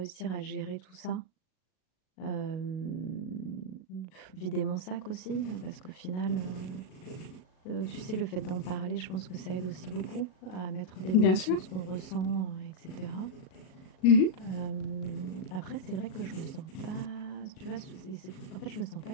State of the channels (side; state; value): right; late; 38 ms